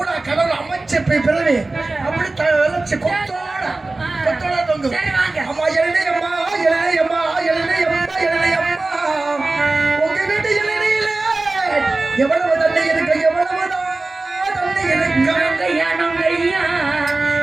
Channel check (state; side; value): quieter; left; 3.2 dB